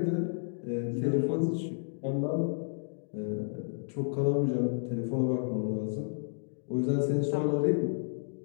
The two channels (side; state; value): right; silent; digital silence